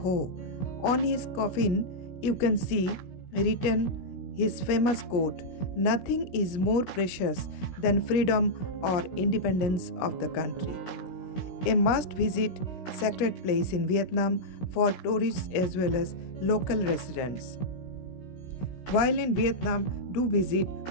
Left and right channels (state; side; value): late; right; 17 ms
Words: On his coffin, you can see written his famous quote, "Nothing is more precious than freedom or independence of the country." A must-visit sacred place in Vietnam for tourists as well as local residents. While in Vietnam, do visit